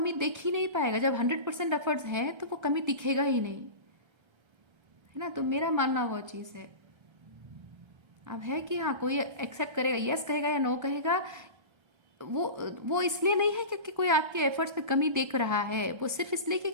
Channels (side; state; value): left; late; 1.3 ms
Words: देख ही नहीं पाएगा। जब 100% एफर्ट्स हैं तो वो कमी दिखेगा ही नहीं, है ना। तो मेरा मानना वो चीज़ है। अब है कि हाँ, कोई एक्सेप्ट करेगा, यस कहेगा या नो कहेगा, वो वो इसलिए नहीं है क्योंकि कोई आपके एफर्ट्स में कमी देख रहा है, वो सिर्फ इसलिए कि